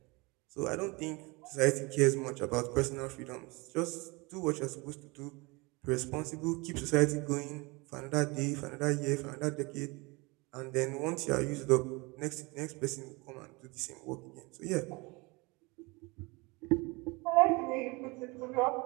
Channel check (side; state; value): left; quieter; 26.1 dB